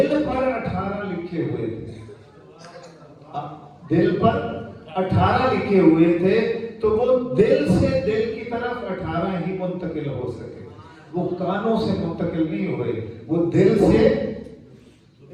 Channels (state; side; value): identical; both; correlation 1.00